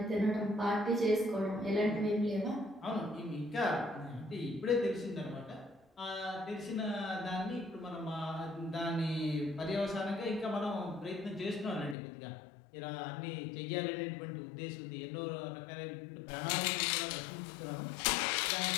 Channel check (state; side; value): drops out; right; at 12.0 s